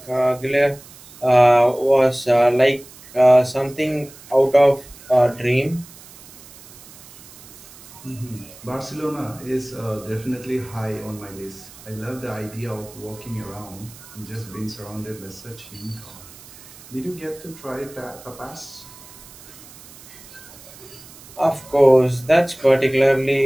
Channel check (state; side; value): noise; right; hiss, 20 dB below the sound